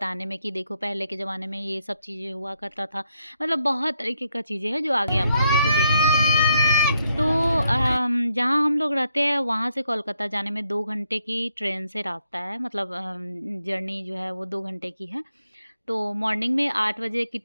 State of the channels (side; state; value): both; inverted; correlation -0.77